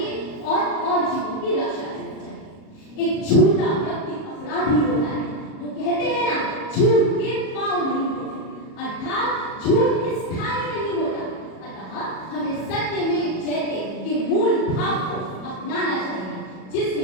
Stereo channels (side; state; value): right; late; 37 ms